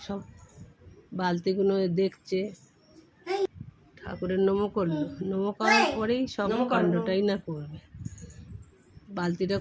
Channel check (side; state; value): both; identical; correlation 1.00